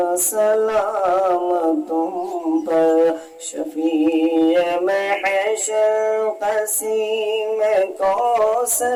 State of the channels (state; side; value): identical; both; correlation 1.00